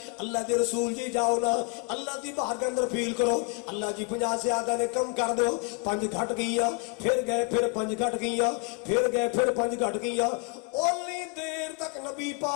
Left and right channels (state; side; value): quieter; right; 27.5 dB